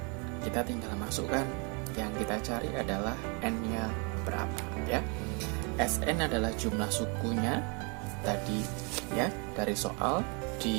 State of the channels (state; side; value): quieter; left; 34.2 dB